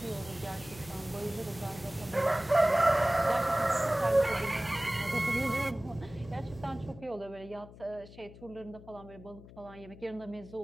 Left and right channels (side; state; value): left; noise; hum, 18 dB below the sound